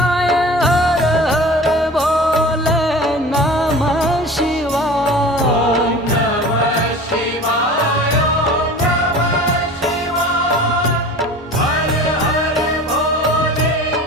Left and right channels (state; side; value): normal; both; correlation 0.39